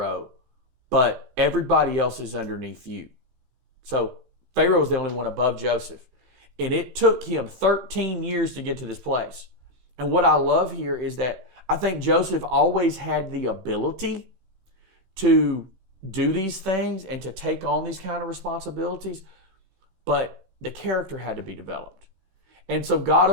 but everybody else is underneath you." So Pharaoh was the only one above Joseph. And it took him 13 years to get to this place. And what I love here is that I think Joseph always had the ability to do these things and to take on these kind of responsibilities, but the character had to be developed. And so God,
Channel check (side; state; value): left; late; 18 ms